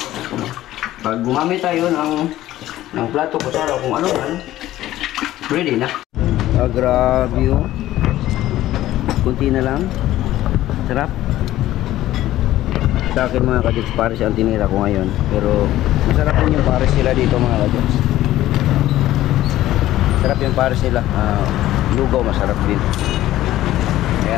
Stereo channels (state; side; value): quieter; right; 14.5 dB